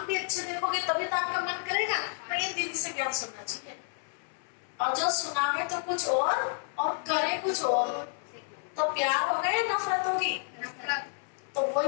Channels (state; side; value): silent; right; 58 dB below the other